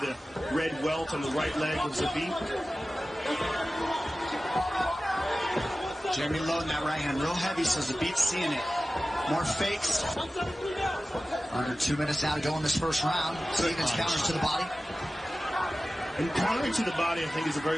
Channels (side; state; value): both; normal; correlation 0.96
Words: red welt on the right leg of Zabit. Jeremy loading that right hand real heavy, so Zabit's seeing it. More fakes. Under 2 minutes now to go in this first round. Stevens counters to the body. And countering to the body, I think, is a